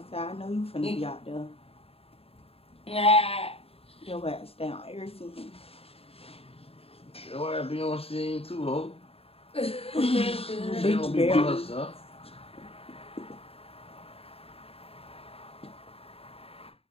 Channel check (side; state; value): right; late; 0.28 ms